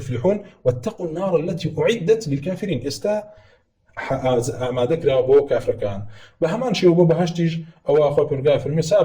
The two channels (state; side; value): identical; both; correlation 1.00